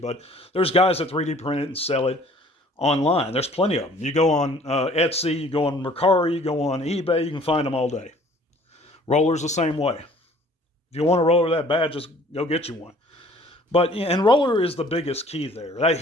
there's guys that 3D print it and sell it online. There's plenty of them. You go on Etsy, you go on Mercari, you go on eBay, you can find them all day. Roller's the same way. If you want a roller that bad, just go get you one. And roller is the biggest key there.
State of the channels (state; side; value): normal; both; correlation 0.54